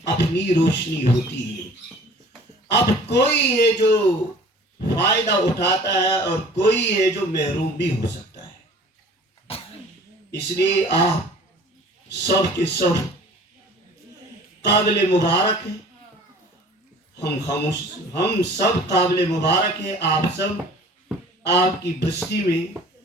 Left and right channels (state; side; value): normal; both; correlation 0.48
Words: اپنی روشنی ہوتی ہے. اب کوئی ہے جو فائدہ اٹھاتا ہے اور کوئی ہے جو محروم بھی ہو سکتا ہے. اس لیے آپ سب کے سب قابل مبارک ہیں. ہم سب قابل مبارک ہیں. آپ سب، آپ کی بستی میں